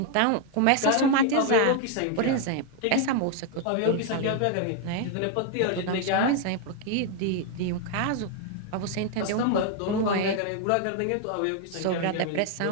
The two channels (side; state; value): both; different; correlation 0.01